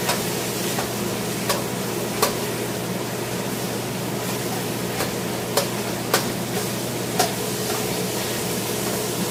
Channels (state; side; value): identical; both; correlation 1.00